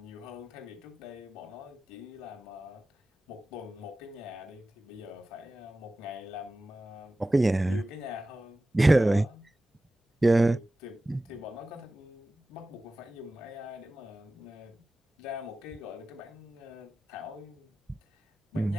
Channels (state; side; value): normal; both; correlation 0.95